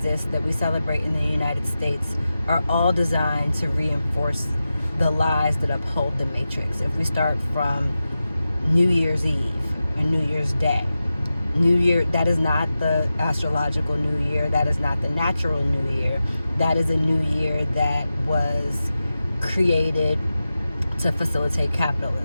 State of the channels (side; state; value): both; inverted; correlation -0.93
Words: that we celebrate in the United States are all designed to reinforce the lies that uphold the Matrix. If we start from New Year's Eve and New Year's Day, New Year, that is not the astrological New Year, that is not the natural New Year. That is a New Year that was created to facilitate